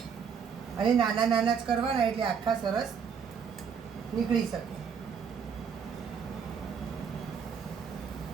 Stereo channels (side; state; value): left; quieter; 6.7 dB